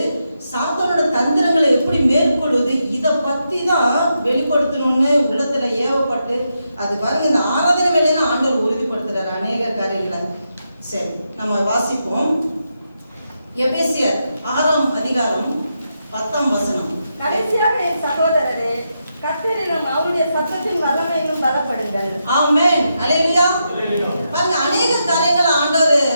சாத்தானோட தந்திரங்களை எப்படி மேற்கொள்வது, இதை பத்தி தான் வெளிப்படுத்தணும்னு உள்ளத்துல ஏவப்பட்டு அது பாருங்க. இந்த ஆராதனை வேலையில ஆண்டவர் உறுதிப்படுத்துறாரு அநேக காரியங்களை. சரி, நம்ம வாசிப்போம். எபேசியர் 6ஆம் அதிகாரம் 10ஆம் வசனம். கடைசியாக என் சகோதரரே, கர்த்தரிலும் அவருடைய சத்தத்தின் வல்லமையிலும் பலப்படுங்கள். ஆமென். அல்லேலூயா. பாருங்க, அநேக காரியங்கள் ஆண்டவர்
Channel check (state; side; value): inverted; both; correlation -0.84